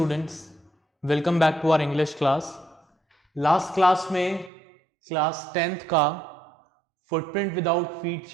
welcome back to our English class. Last class में class 10th का footprint without feet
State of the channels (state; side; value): drops out; left; at 4.5 s